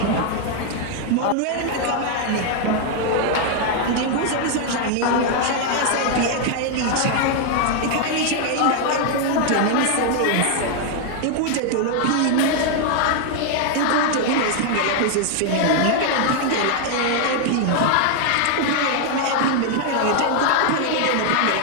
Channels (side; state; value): both; different; correlation 0.00